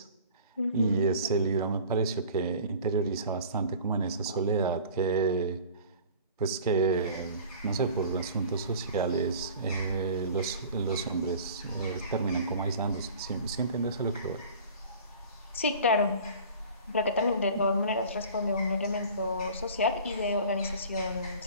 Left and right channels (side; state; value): both; inverted; correlation -0.44